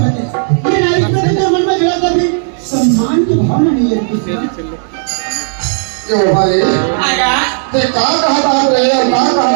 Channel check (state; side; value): silent; left; digital silence